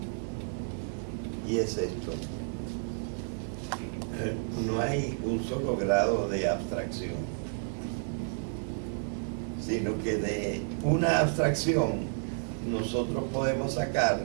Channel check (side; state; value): left; silent; digital silence